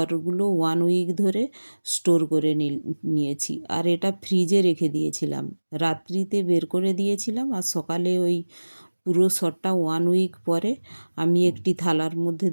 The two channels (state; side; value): inverted; both; correlation -1.00